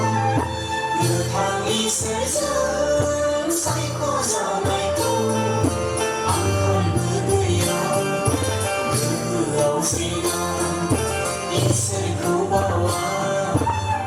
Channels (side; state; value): both; identical; correlation 1.00